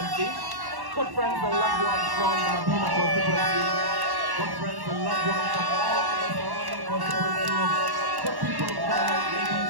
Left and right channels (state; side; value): late; left; 1.1 ms